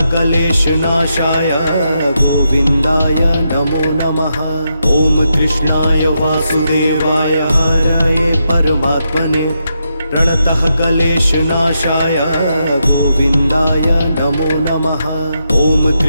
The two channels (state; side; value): inverted; both; correlation -0.83